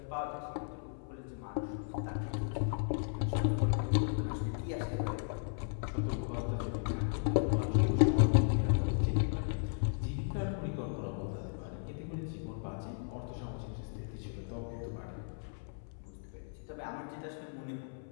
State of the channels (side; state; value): right; silent; 54 dB below the other